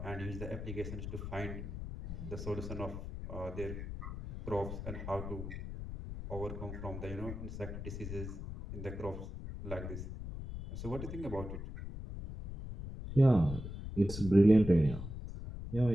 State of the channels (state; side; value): noise; left; rumble, 7 dB below the sound